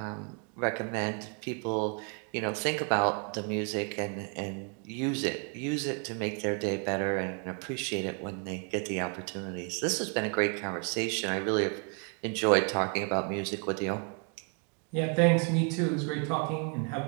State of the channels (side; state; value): left; quieter; 38.5 dB